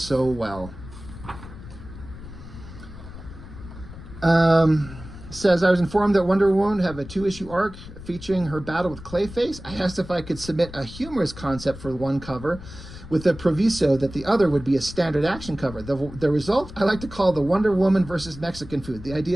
well. Says, I was informed that Wonder Woman would have a 2-issue arc featuring her battle with Clayface. I asked if I could submit a humorous concept for one cover with the proviso that the other would be a standard action cover. The result I like to call the Wonder Woman versus Mexican food. The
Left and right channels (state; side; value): noise; left; rumble, 14 dB below the sound